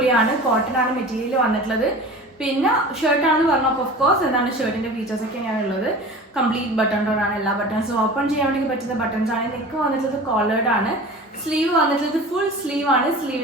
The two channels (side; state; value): both; normal; correlation 0.38